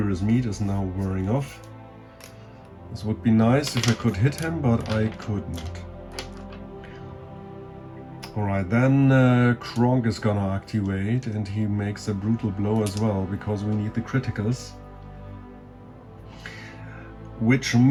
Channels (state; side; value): identical; both; correlation 1.00